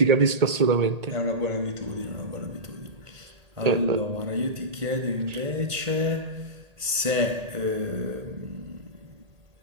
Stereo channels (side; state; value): left; late; 1.8 ms